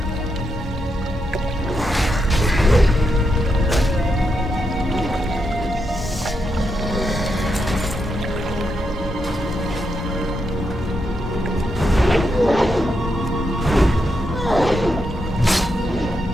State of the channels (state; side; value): normal; both; correlation 0.83